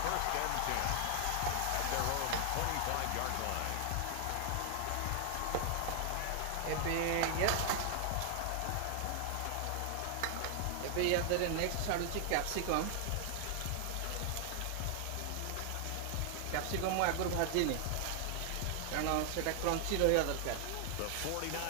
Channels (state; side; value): different; both; correlation 0.00